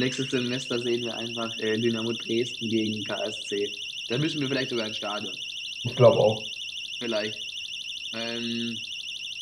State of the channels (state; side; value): identical; both; correlation 1.00